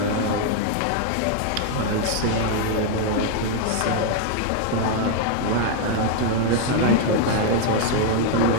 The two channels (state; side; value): different; both; correlation 0.00